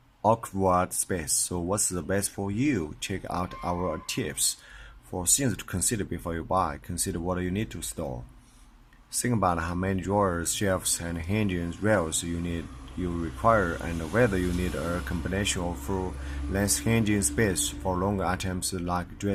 awkward space. So what's the best for you? Check out our tips for things to consider before you buy. Consider what you need to store. Think about how many drawers, shelves, and hanging rails you require, and whether you need a combination of full-length hanging space for longer items like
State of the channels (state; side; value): identical; both; correlation 1.00